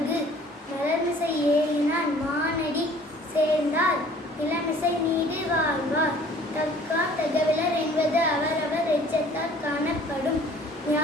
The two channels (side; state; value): both; normal; correlation 0.52